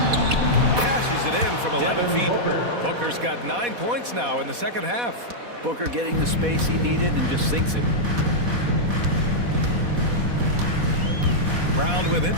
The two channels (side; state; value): left; late; 4.1 ms